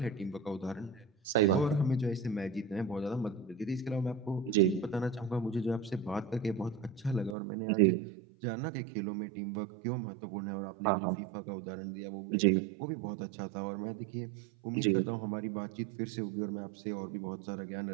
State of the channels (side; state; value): left; drops out; at 7.4 s